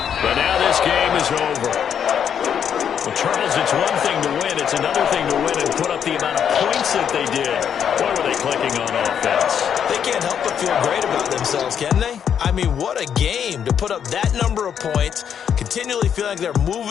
but now this game is over. Well, Charles, it's one thing to win. It's another thing to win and put up the amount of points that they did. Boy, were they clicking on offense. They can't help but feel great about themselves, can they? I mean, what a game to put up that number of points, continually feel like they're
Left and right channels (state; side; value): quieter; right; 8.3 dB